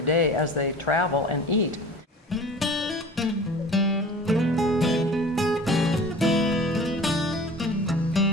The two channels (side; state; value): both; normal; correlation 0.42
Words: day as they travel and eat.